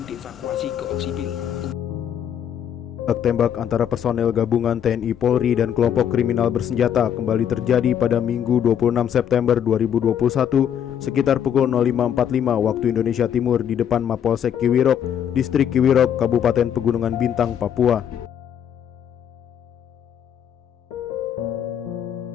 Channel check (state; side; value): quieter; right; 9.0 dB